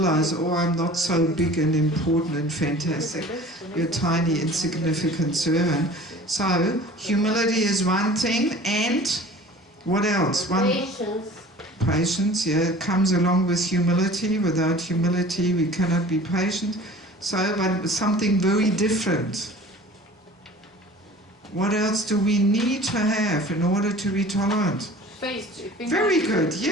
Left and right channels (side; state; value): both; normal; correlation 0.44